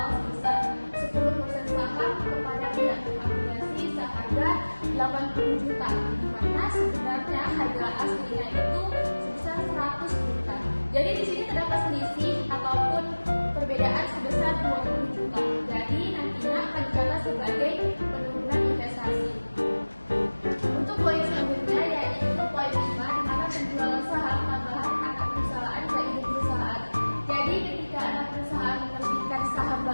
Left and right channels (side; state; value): both; inverted; correlation -1.00